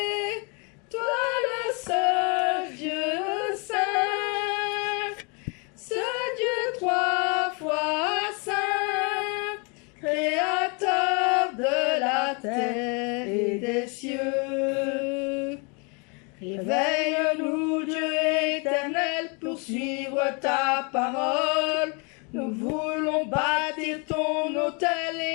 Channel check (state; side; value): quieter; right; 33.4 dB